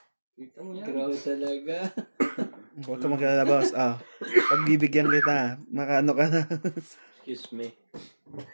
Kita mo yan. Grabe talaga. Huwag ka mag-alala, boss. Pagbibigyan kita, makaano ka na. Excuse me.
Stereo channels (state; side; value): inverted; both; correlation -1.00